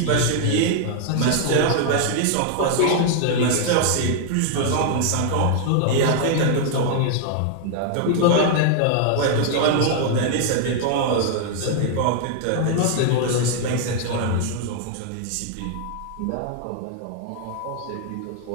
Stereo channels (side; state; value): both; different; correlation 0.00